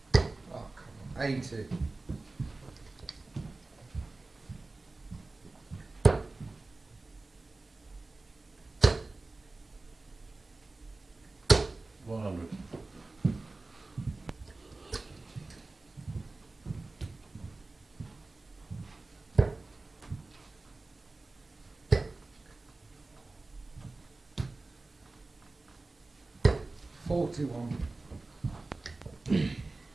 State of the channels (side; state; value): left; quieter; 3.3 dB